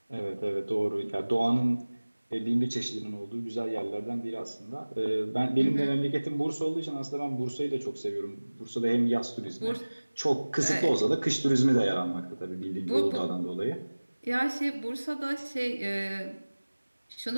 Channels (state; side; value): inverted; both; correlation -1.00